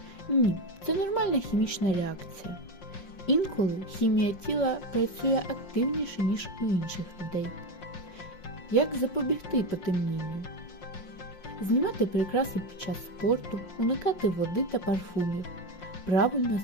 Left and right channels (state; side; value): late; right; 5.6 ms